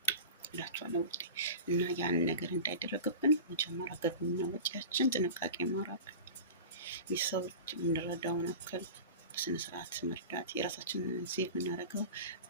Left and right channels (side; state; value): both; inverted; correlation -0.33